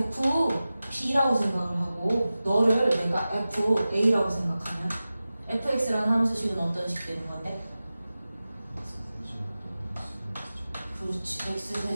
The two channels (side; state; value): both; inverted; correlation -0.95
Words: 생각을 하고 너를 내가 fa라고 생각하면 fx라는 함수식은 어떤 식 되는 건데? 그렇지.